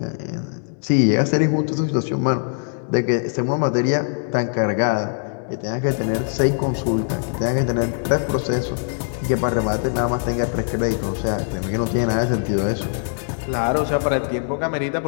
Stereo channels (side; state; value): right; silent; digital silence